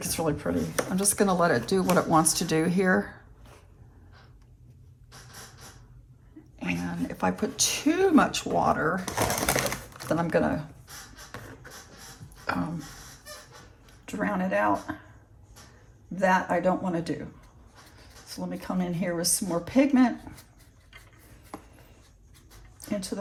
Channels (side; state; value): both; identical; correlation 1.00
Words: it's really pretty. I'm just gonna let it do what it wants to do here. And if I put too much water, then I'm gonna drown it out. That I don't want to do. So let me come in here with some more pigment into